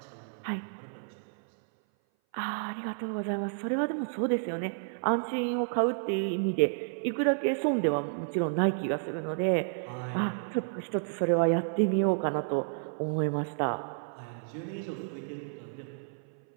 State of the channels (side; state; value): left; silent; 57 dB below the other